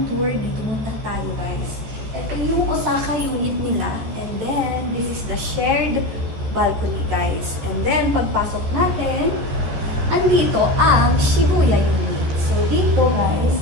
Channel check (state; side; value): late; left; 14 ms